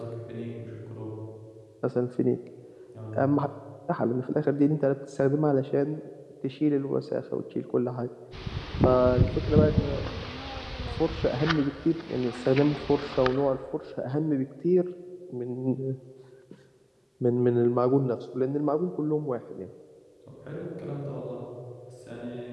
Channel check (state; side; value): identical; both; correlation 1.00